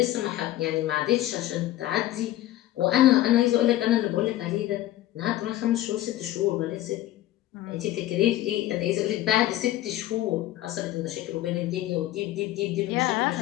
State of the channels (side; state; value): right; quieter; 14.6 dB